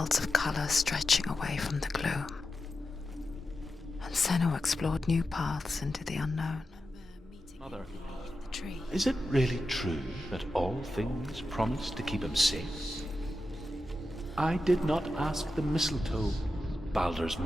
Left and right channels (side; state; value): both; normal; correlation 0.90